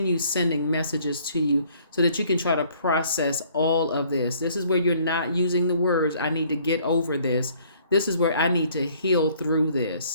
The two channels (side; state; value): both; inverted; correlation -0.60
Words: sending messages to you so that you can try to process all of this. This is where you're not using the words, I need to get over this. This is where I need to heal through